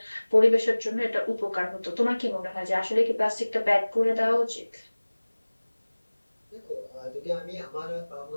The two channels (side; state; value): both; inverted; correlation -1.00